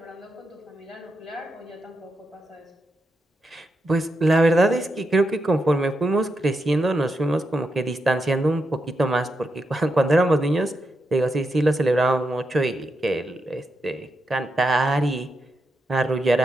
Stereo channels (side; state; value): both; normal; correlation 0.85